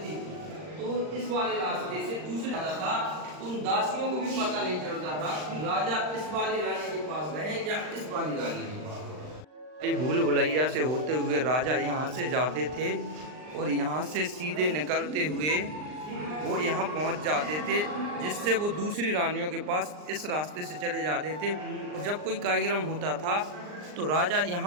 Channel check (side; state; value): left; late; 39 ms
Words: तो इस वाले रास्ते से दूसरे राजा था तो उन दासियों को भी पता नहीं चलता था कि राजा इस वाली रानी के पास गए या इस वाली रानी के पास। भूल भुलैया से होते हुए राजा यहाँ से जाते थे और यहाँ से सीधे निकलते हुए वो यहाँ पहुँच जाते थे जिससे वो दूसरी रानियों के पास इस रास्ते से चले जाते थे। और जब कोई कार्यक्रम होता था तो राजा